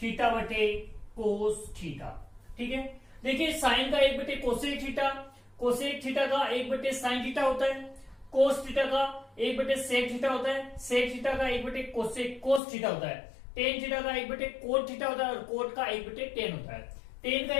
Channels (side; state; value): right; drops out; at 12.6 s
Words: थीटा बटे कोस थीटा। ठीक है, देखिए साइन का 1/कोसेक थीटा, कोसेक थीटा का 1/साइन थीटा होता है, कोस थीटा का 1/सेक थीटा होता है, सेक थीटा का 1/कोसेक कोस थीटा होता है, टेन थीटा का 1/कोट थीटा होता है, और कोट का 1/टेन होता है। टेन का